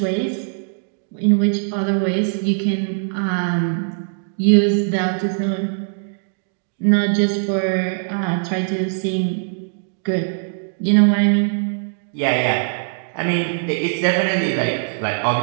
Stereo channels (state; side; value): silent; left; digital silence